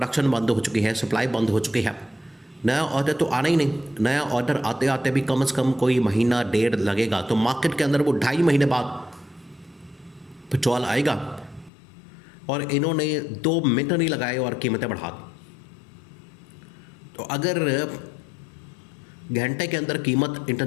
बंद हो चुकी है, सप्लाई बंद हो चुकी है, नया ऑर्डर तो आना ही नहीं। नया ऑर्डर आते आते भी कम से कम कोई महीना डेढ़ लगेगा, तो मार्केट के अंदर वो 2.5 महीने बाद पेट्रोल आएगा और इन्होंने 2 मिनट नहीं लगाए और कीमतें बढ़ा दी। तो अगर घंटे के अंदर कीमत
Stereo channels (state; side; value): drops out; right; at 11.7 s